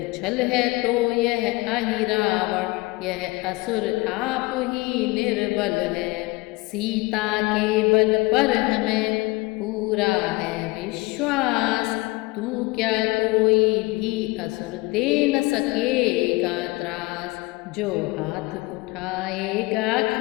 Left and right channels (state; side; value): quieter; right; 23.0 dB